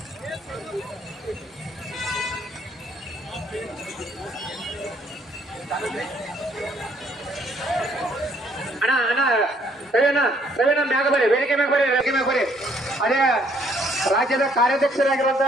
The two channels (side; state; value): both; normal; correlation 0.66